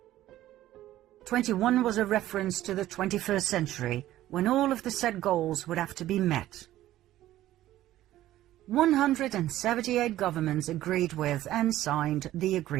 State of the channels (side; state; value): left; quieter; 14.2 dB